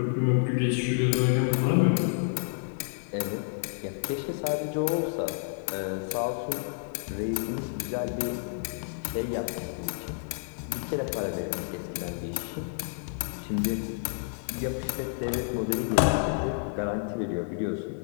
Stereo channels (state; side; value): silent; right; 58 dB below the other